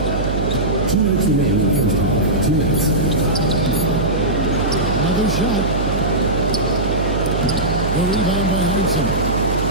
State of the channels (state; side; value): noise; right; hum, 3 dB below the sound